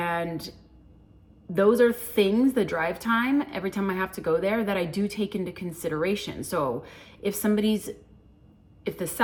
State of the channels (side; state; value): both; identical; correlation 1.00